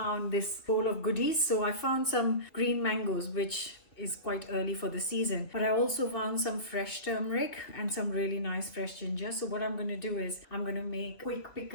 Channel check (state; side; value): late; right; 2.9 ms